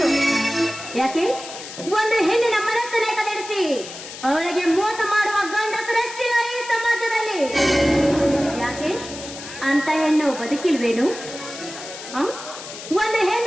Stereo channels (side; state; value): left; noise; hiss, 12 dB below the sound